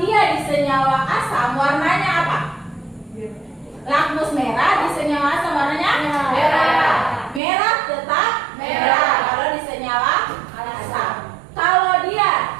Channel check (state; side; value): drops out; left; at 7.4 s